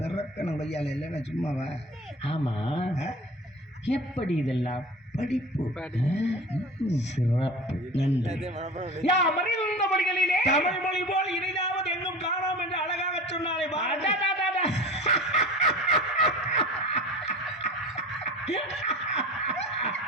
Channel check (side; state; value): both; normal; correlation 0.36